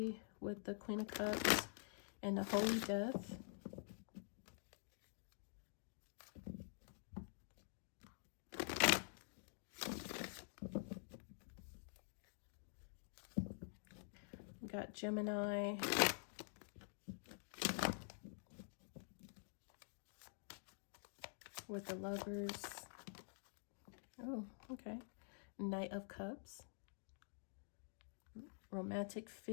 with the Queen of Cups and the Holy Death. We got Gemini. With the Lovers. Oh, okay. Knight of Cups. Romantic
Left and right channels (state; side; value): silent; right; digital silence